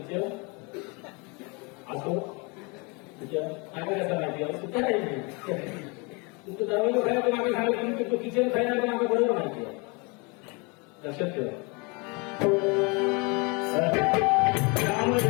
असो काय कसं माहिती सुद्धा नाही तुमचं दरवाजा खायला मागे सांगितलं तुम्ही तो किचन खायला मागे बरोबर माहिती आहे लक्षात ठेवा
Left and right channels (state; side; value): quieter; right; 29.9 dB